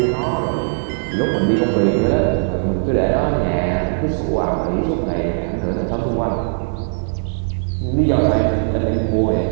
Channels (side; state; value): left; silent; digital silence